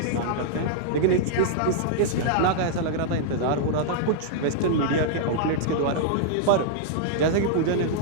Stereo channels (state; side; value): different; both; correlation -0.01